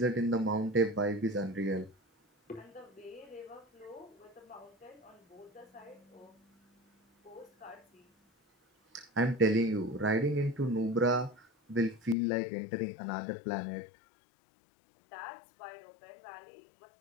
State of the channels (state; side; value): drops out; right; at 12.2 s